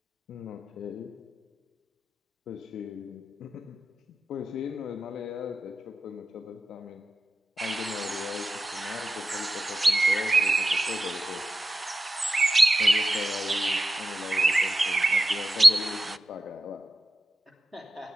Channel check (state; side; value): normal; both; correlation 0.91